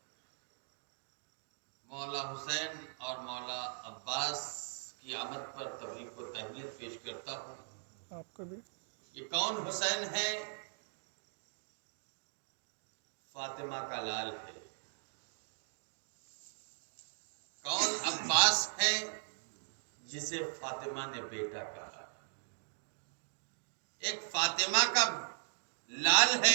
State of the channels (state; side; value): silent; left; digital silence